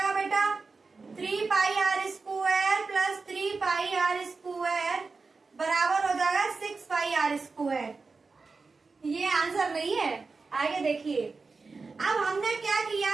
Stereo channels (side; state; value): left; quieter; 4.2 dB